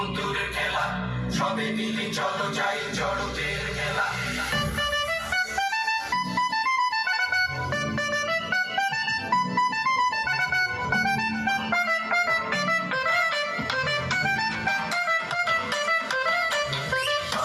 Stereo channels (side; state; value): both; identical; correlation 1.00